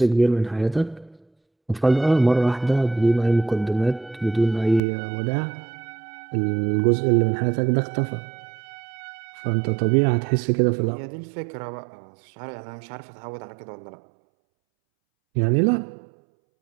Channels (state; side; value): drops out; left; at 4.8 s